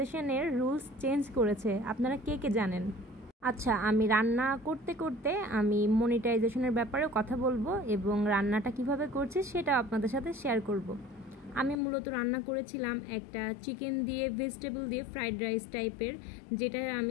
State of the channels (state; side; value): drops out; right; at 11.8 s